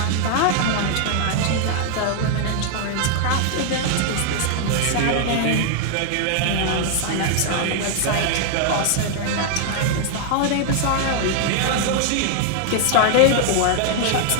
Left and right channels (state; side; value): different; both; correlation 0.00